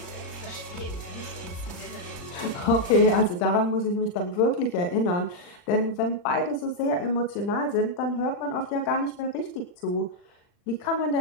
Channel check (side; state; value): right; late; 39 ms